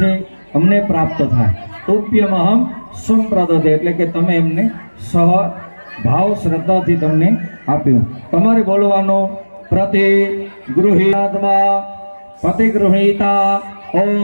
અમને પ્રાપ્ત થાય. તોપ્યમહમ સંપ્રદતે, એટલે કે તમે એમને સહ ભાવ શ્રદ્ધાથી તમને આપ્યું. તમારે બોલવાનો પ્રતિગૃહીત્વા પ્રતિગૃહીતા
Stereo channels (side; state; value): both; inverted; correlation -1.00